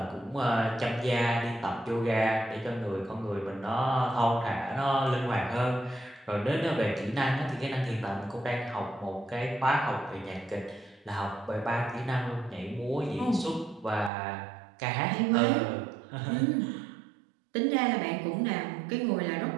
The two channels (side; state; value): left; drops out; at 14.1 s